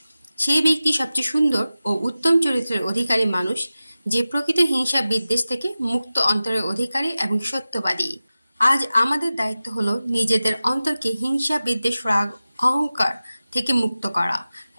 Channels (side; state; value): both; inverted; correlation -0.95